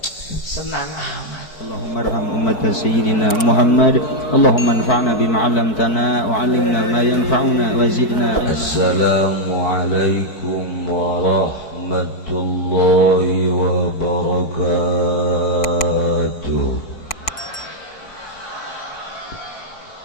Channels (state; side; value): late; right; 4.6 ms